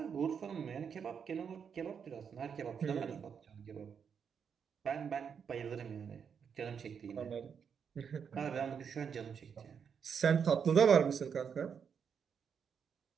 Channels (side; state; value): left; quieter; 7.0 dB